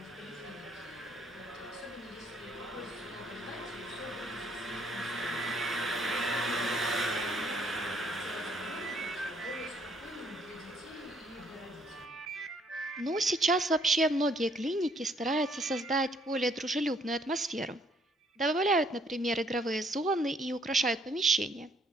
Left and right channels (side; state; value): both; normal; correlation 0.66